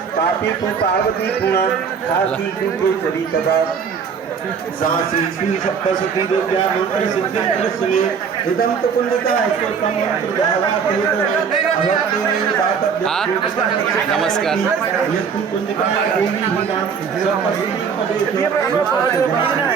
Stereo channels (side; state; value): left; quieter; 6.5 dB